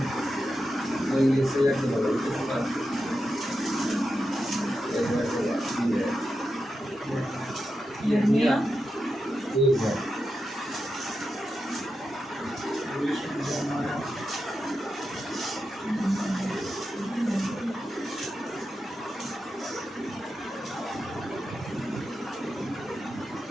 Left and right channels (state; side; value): normal; both; correlation 0.89